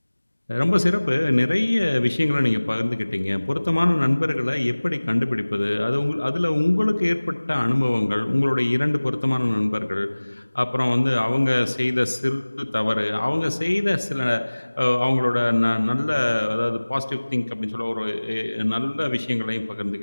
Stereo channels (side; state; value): both; inverted; correlation -1.00